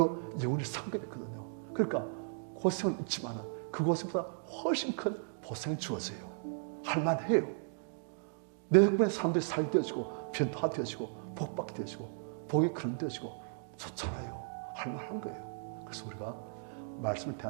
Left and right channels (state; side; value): silent; left; digital silence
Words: 영원히 상급했거든요. 그러니까 고생은 있지만 그 고생보다 훨씬 큰 보상이 주어져요. 할만해요. 내 덕분에 사람들이 살게 되어지고 변화되어지고 복받게 되어지고 복이 그런되어지고 좋잖아요. 할만한 거예요. 그래서 우리가 말씀을